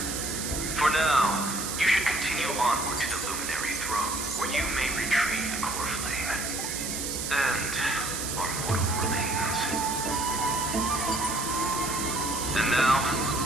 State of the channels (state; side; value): noise; right; hiss, 3 dB below the sound